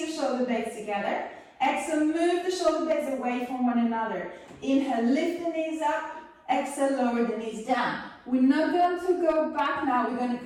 shoulder blades together. Exhale, move the shoulder blades away from one another. Inhale, lift the knees up. Exhale, lower the knees down. We're not going to go back now, we're going to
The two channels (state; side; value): identical; both; correlation 1.00